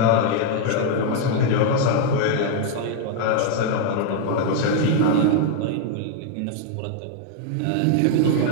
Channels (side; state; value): both; different; correlation 0.00